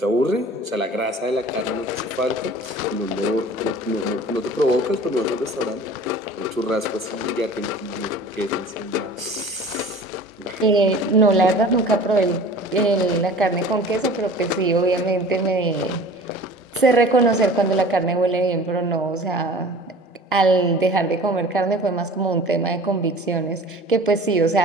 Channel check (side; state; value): both; normal; correlation 0.43